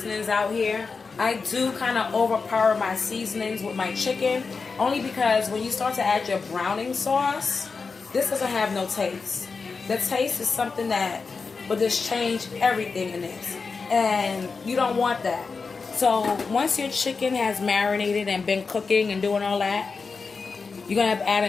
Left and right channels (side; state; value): right; quieter; 4.7 dB